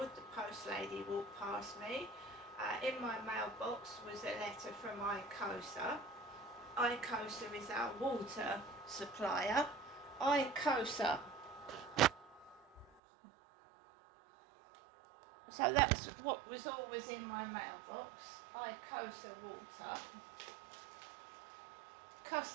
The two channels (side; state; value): left; drops out; at 12.9 s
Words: The post lady walked past me. In my mailbox was a letter from ICOSA. ICOSA is our water supplier. ICOSA. So that's what was always in my mailbox. ICOSA water.